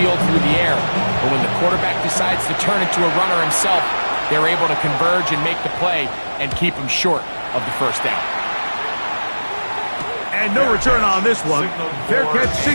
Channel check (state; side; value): inverted; both; correlation -1.00